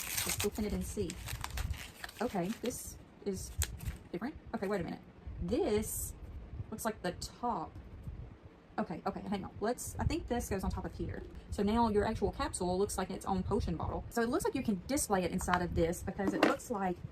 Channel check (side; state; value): both; identical; correlation 1.00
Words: open it and see. Okay, this is different. Okay, wait a minute. This looks like the top. Okay, hang on. I think this goes on top of here. So now your actual capsule looks like its own potion bottle. So it looks like you can display it inside of this because it looks like